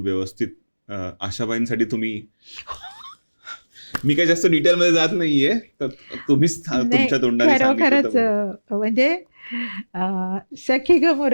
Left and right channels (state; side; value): inverted; both; correlation -1.00